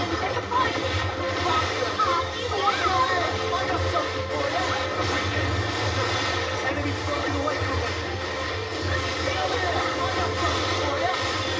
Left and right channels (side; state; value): both; identical; correlation 1.00